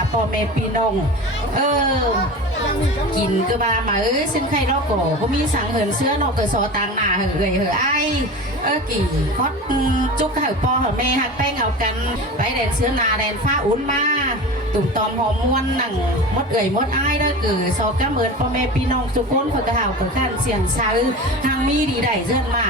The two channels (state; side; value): normal; both; correlation 0.31